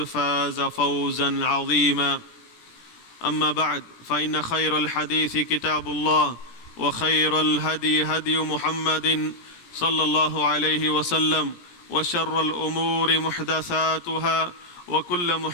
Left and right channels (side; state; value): right; late; 17 ms